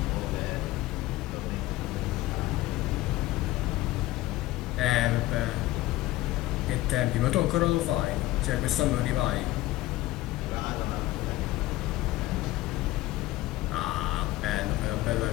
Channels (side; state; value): right; quieter; 17.1 dB